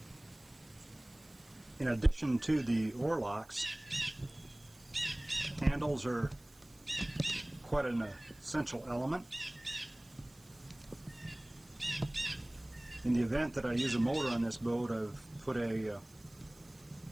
In addition to the oarlocks, handles are quite an essential element. In the event that I use a motor on this boat, I've put a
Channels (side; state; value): right; noise; hiss, 27 dB below the sound